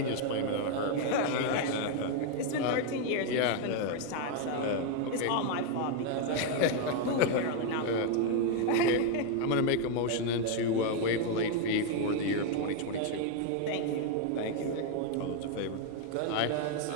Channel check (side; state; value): both; different; correlation 0.01